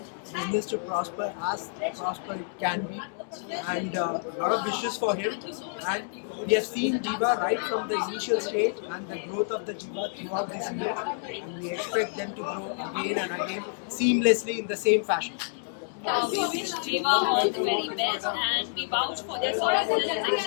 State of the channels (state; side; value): silent; right; 59 dB below the other